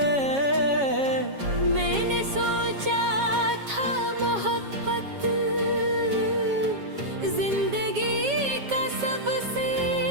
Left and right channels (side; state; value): left; late; 7.3 ms